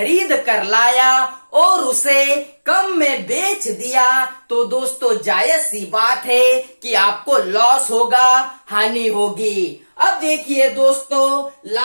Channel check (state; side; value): inverted; both; correlation -1.00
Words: कर लाया और उसे कम में बेच दिया तो दोस्तों जायज सी बात है कि आपको लॉस होगा, हानि होगी। अब देखिए दोस्तों,